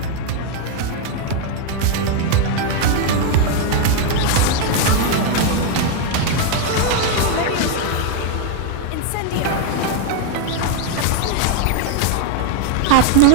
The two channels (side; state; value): both; different; correlation 0.00